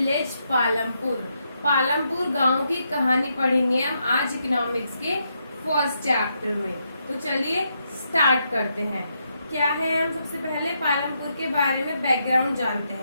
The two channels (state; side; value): inverted; both; correlation -0.80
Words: Palampur. Palampur गांव की कहानी पढ़ेंगे हम आज economics के first chapter में। तो चलिए स्टार्ट करते हैं। क्या है, हम सबसे पहले पालमपुर के बारे में बैकग्राउंड जानते